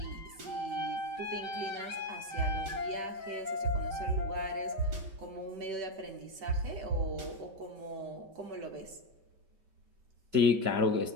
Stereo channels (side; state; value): left; late; 5.2 ms